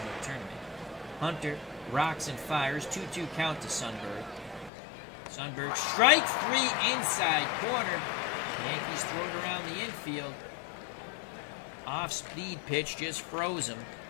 the tournament. Hunter rocks and fires, 2-2 count to Sundberg. Sundberg strikes 3 inside corner. Yankees throw it around the infield. Off-speed pitch just froze him.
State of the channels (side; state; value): right; drops out; at 4.7 s